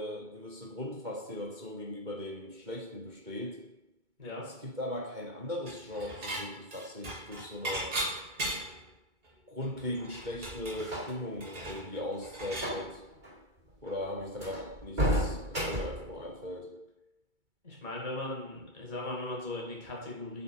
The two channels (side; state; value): left; late; 2.3 ms